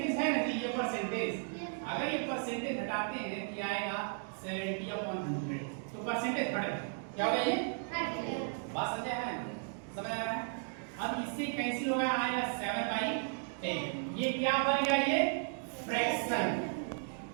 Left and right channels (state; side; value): silent; left; 54 dB below the other